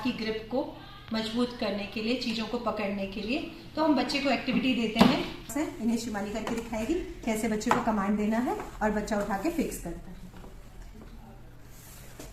की ग्रिप को मजबूत करने के लिए, चीज़ों को पकड़ने के लिए। तो हम बच्चे को एक्टिविटी देते हैं, इन्हें शिवानी करके दिखाएगी कैसे बच्चे को कमांड देना है और बच्चा उठा के फिक्स करता है।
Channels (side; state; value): both; identical; correlation 1.00